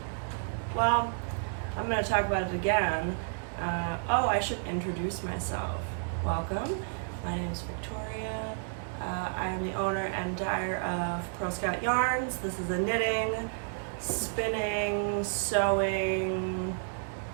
Well, I'm going to talk about it again. I should introduce myself. Welcome. My name is Victoria. I am the owner and dyer of Purl Scout Yarns. This is a knitting, spinning, sewing,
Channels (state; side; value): silent; left; digital silence